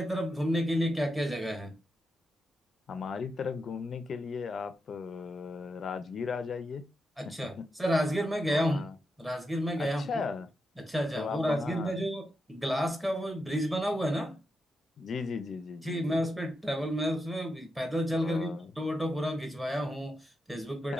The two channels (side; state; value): both; normal; correlation 0.86